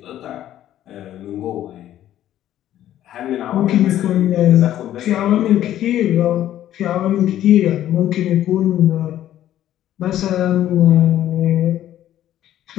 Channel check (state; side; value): quieter; right; 12.3 dB